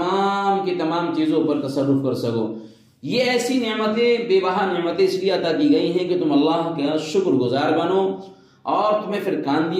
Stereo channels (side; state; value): both; identical; correlation 1.00